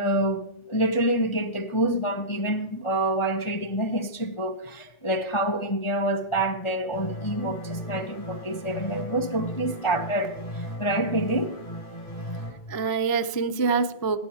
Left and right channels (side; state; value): right; late; 1.4 ms